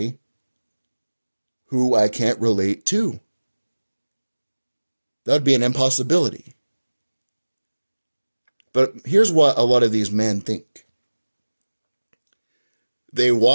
who I can't relate to? That would be an impossibility. But here's what a lot of these men think. They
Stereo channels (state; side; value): inverted; both; correlation -1.00